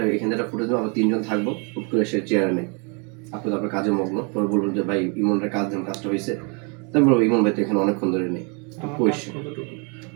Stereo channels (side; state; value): left; quieter; 34.5 dB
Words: এখানে একটা ফুটেজ দেবো, আমরা 3জন থাকবো, হুট করে সে চেয়ারে নেই, আপনি তো আপনার কাজে মগ্ন, পরে বলবেন যে ভাই ইমনের কাজ দেন, কাজটা হয়েছে। তাই বলবো ইমন ভাই তো এখানে অনেকক্ষণ ধরে নেই, তো কইছে